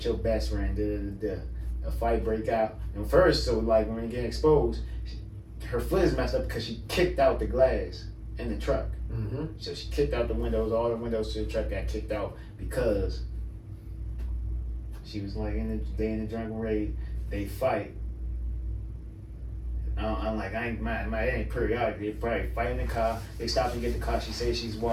your best friend a fight break out. And first, so like when you get exposed, her foot is messed up because she kicked out the glass in the truck. So she kicked out the windows. All the windows to the truck got kicked out because she was like in the drunken rage. They fight. I'm like, it ain't periodic. They probably fight in the car. They stop and get the car. She says she's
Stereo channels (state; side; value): identical; both; correlation 1.00